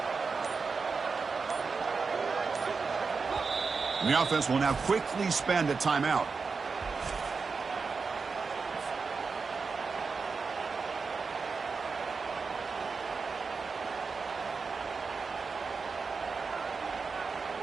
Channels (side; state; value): left; quieter; 4.8 dB